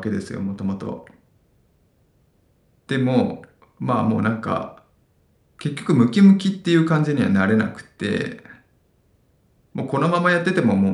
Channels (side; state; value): both; identical; correlation 1.00